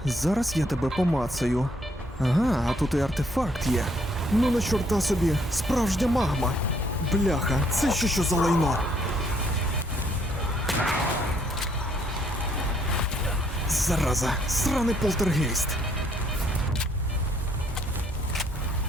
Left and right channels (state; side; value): normal; both; correlation 0.68